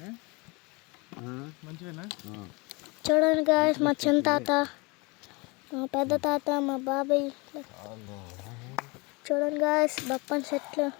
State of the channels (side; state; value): right; quieter; 27.2 dB